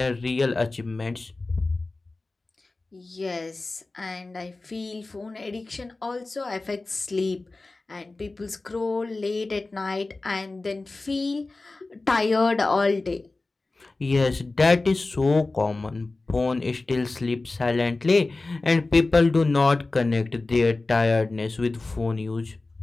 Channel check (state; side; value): quieter; right; 3.3 dB